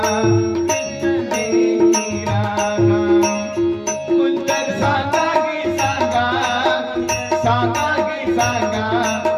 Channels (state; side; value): identical; both; correlation 1.00